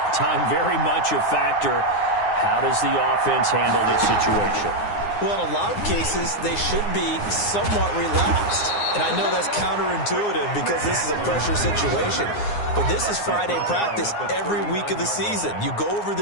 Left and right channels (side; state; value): right; late; 9.7 ms